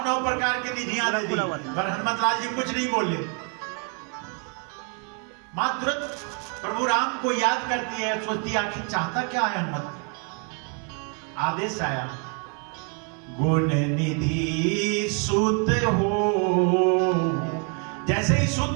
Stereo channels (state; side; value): quieter; left; 36.7 dB